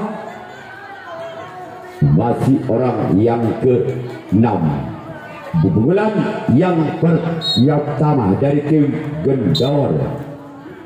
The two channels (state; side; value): identical; both; correlation 1.00